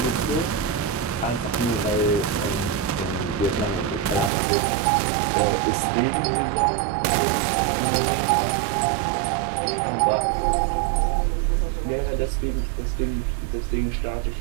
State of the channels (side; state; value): left; drops out; at 4.3 s